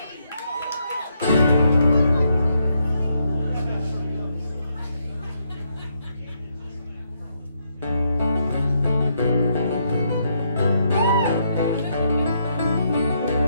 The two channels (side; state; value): both; inverted; correlation -0.76